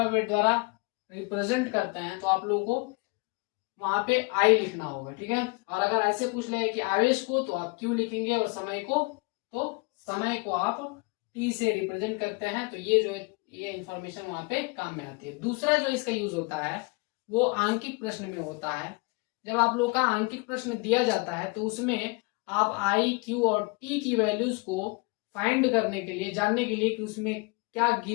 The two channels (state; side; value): quieter; right; 28.8 dB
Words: द्वारा रिप्रेजेंट करते हैं, तो आप लोगों को वहां पे आई लिखना होगा, ठीक है। और अगर ऐसे पूछ ले कि आवेश को, तो आप क्यू लिखेंगे और समय को, तो समय को आप टी से रिप्रेजेंट करते हैं। तो ये जो ये इंफॉर्मेशन वहां पे काम में आती है। दूसरा जो इसका यूज होता है वो आंकिक प्रश्न में होता है। जब आप लोग का आंकिक प्रश्न दिया जाता है तो उसमें आप आई, क्यू और टी की वैल्यूज को फाइंड करने के लिए, जानने के लिए कि उसमें क्या